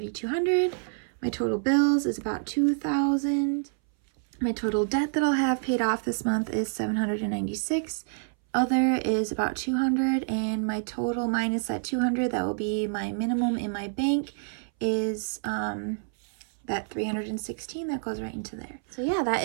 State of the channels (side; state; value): left; silent; 60 dB below the other